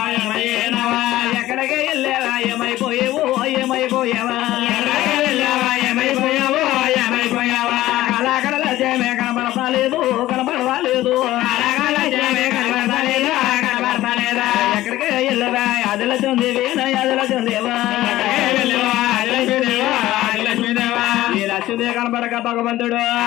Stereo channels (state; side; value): quieter; right; 15.6 dB